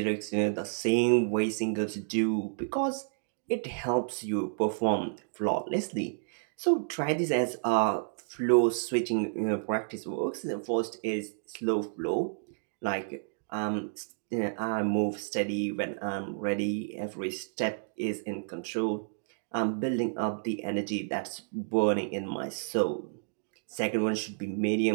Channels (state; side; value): silent; left; digital silence